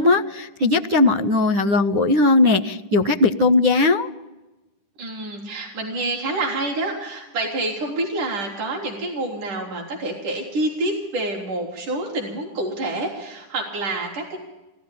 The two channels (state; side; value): late; left; 10 ms